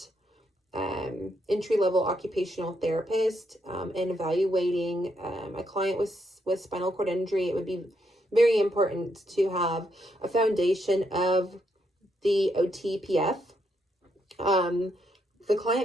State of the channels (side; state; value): both; normal; correlation 0.77